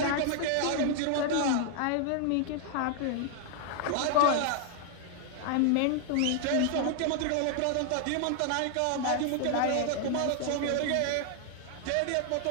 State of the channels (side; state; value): both; different; correlation 0.00